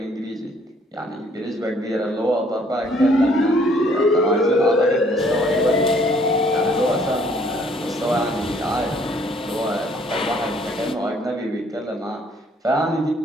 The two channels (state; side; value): normal; both; correlation 0.62